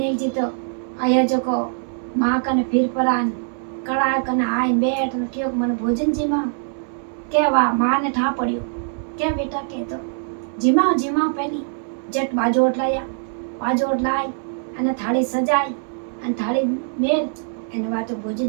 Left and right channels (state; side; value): silent; left; digital silence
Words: जी तो आया जो को माँ कने फिर परान कड़ा कने आए बैठ ने क्यों मन भोजन जीमा के वा मां ने ठा पड़ियो के बेटा के तो जीमा पहली जट बाजोट लाई अने थाली सजाई अने थाली मेल अने वा तो